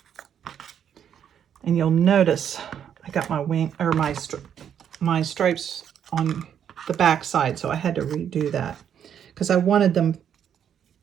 And you'll notice I got my wing or my stripes on the back side, so I had to redo that because I wanted them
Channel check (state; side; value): quieter; left; 8.8 dB